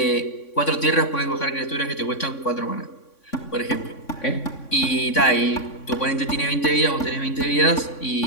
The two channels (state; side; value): late; right; 3.6 ms